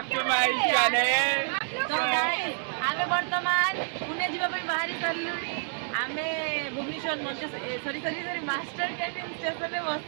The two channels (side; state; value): left; silent; 59 dB below the other